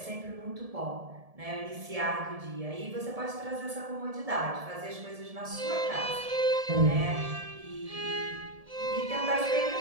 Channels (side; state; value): left; late; 1.7 ms